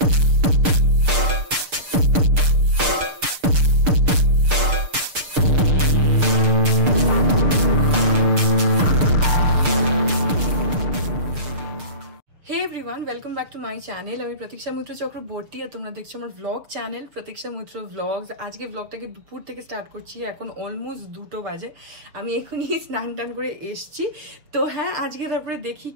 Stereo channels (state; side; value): late; left; 6.6 ms